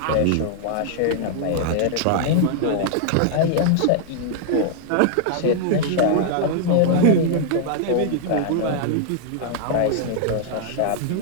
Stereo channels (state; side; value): different; both; correlation -0.01